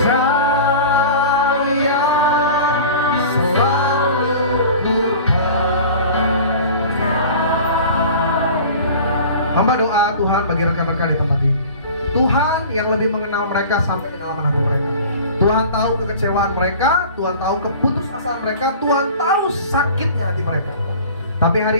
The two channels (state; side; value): inverted; both; correlation -0.40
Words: selalu ku percaya. Hamba doa Tuhan bagi rekan-rekan di tempat ini. Tuhan yang lebih mengenal mereka sampai kedalaman hati mereka. Tuhan tahu kekecewaan mereka, Tuhan tahu keputusasaan mereka, Tuhan tahu sakitnya hati mereka. Tapi